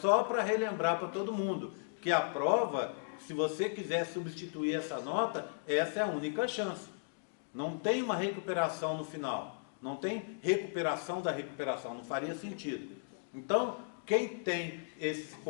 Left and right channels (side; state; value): right; silent; digital silence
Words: para relembrar para todo mundo que a prova, se você quiser substituir essa nota, essa é a única chance. Não tem uma recuperação no final. Não tem recuperação da recuperação. Não faria sentido. Então, quem tem esses